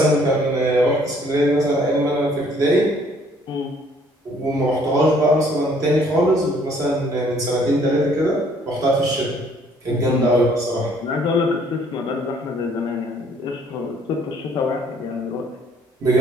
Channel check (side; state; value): both; normal; correlation 0.61